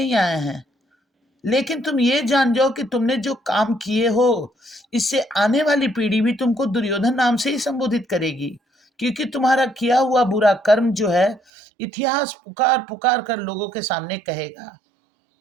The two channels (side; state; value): left; drops out; at 11.4 s